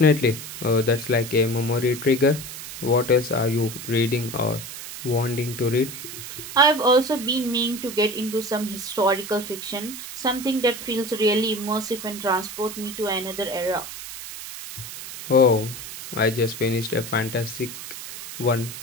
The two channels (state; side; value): noise; right; hiss, 10 dB below the sound